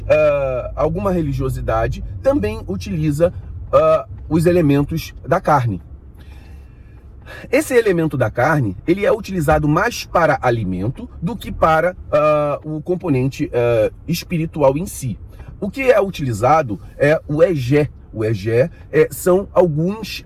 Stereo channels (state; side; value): identical; both; correlation 1.00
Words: religiosidade também utiliza os elementos da carne. Esse elemento da carne, ele é utilizado mais para alimento do que para o componente espiritual em si. O que é utilizado é o egé. O egé são alguns